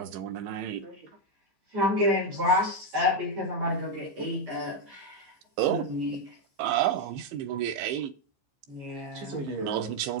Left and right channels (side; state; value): left; late; 15 ms